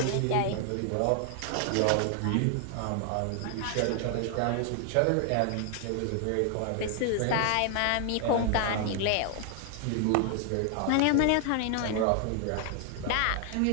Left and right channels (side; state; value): both; different; correlation 0.00